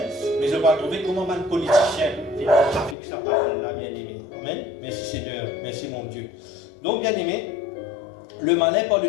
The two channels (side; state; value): right; drops out; at 3.0 s